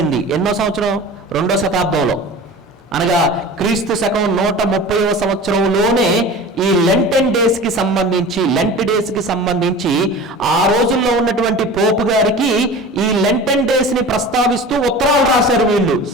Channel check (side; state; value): both; normal; correlation 0.37